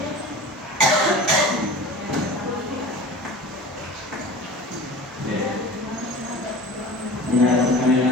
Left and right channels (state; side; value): normal; both; correlation 0.38